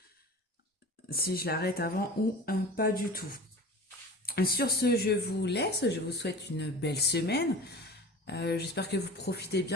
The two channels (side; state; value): both; normal; correlation 0.37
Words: si je l'arrête avant ou pas du tout. Sur ce, je vous laisse. Je vous souhaite une belle semaine. J'espère que vous profitez